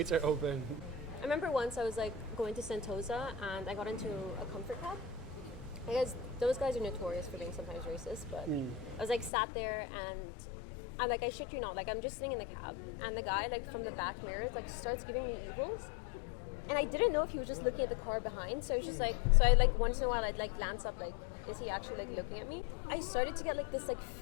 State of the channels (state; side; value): drops out; right; at 9.3 s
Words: are open. I remember once I was like going to Sentosa, and I got into a comfort cab. I guess those guys are notorious for being sometimes racist, but I was like sat there, and I shit you not, like I'm just sitting in the cab, and the guy like from the back mirrors like starts giving me evils, and I didn't know if he was just looking at the car behind, so I was just like, so I like once in a while I'd like glance up, like, is he actually like looking at me? I started to get like this like